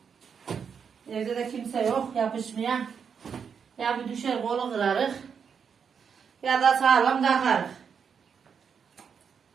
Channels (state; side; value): quieter; left; 6.7 dB